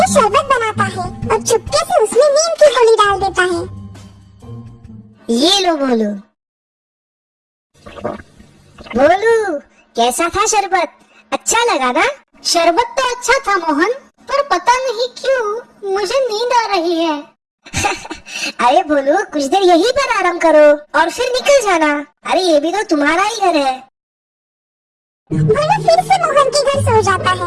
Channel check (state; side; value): identical; both; correlation 1.00